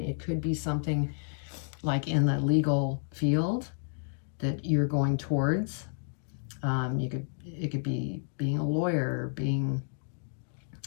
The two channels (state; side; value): silent; right; digital silence